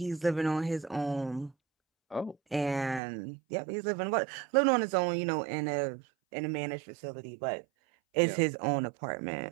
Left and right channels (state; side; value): drops out; left; at 3.0 s